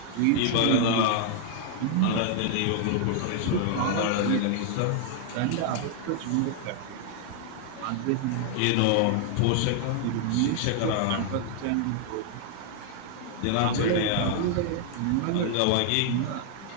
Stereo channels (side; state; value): both; different; correlation 0.00